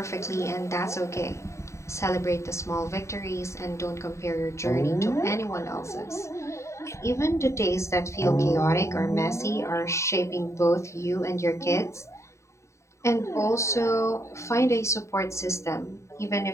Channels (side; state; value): right; late; 0.14 ms